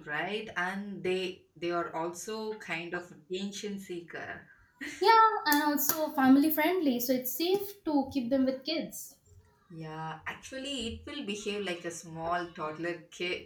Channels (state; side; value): identical; both; correlation 1.00